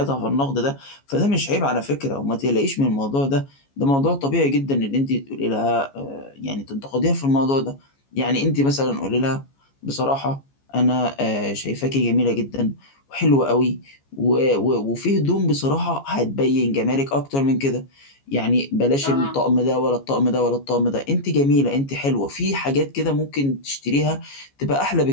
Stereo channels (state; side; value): late; right; 14 ms